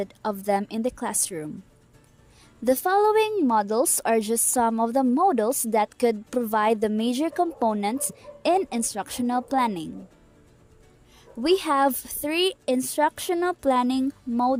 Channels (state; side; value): identical; both; correlation 1.00